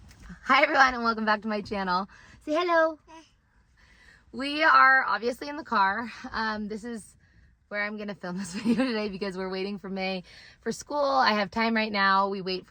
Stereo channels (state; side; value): identical; both; correlation 1.00